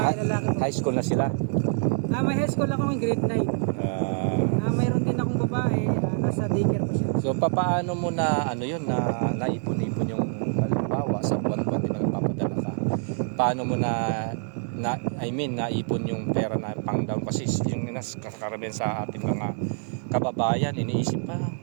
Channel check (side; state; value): left; silent; 61 dB below the other